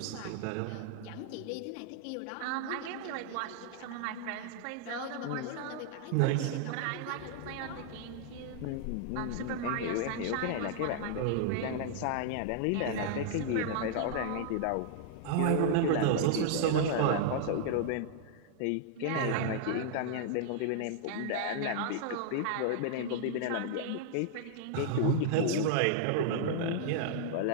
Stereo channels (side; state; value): both; different; correlation -0.01